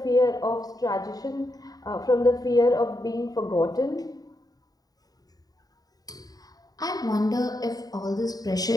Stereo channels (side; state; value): right; late; 0.18 ms